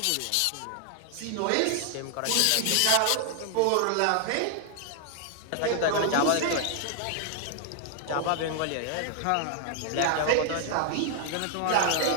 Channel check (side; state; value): both; different; correlation 0.00